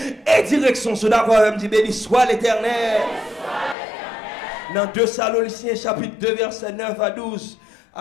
et direction. Est-ce que d'accord avec? Dit béni soit l'Éternel. Dans 2 Thessaloniciens chapitre 2 verset 9 à 12,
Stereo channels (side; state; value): right; drops out; at 3.8 s